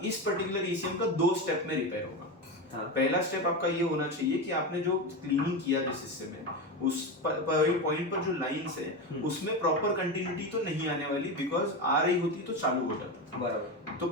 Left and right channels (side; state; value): both; normal; correlation 0.18